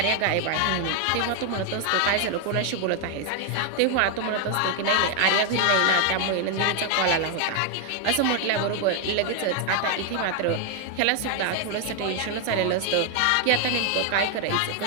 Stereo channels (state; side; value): different; both; correlation 0.00